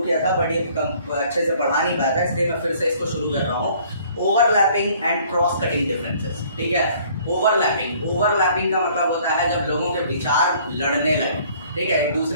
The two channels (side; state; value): both; inverted; correlation -0.57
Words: किया था बट ये अच्छे से पढ़ा नहीं पाया था, इसलिए मैं फिर से इसको शुरू कर रहा हूँ. Overlapping and cross cutting differences. ठीक है, ओवरलैपिंग का मतलब होता है जब लोगों के विचार लड़ने लगे. ठीक है, एक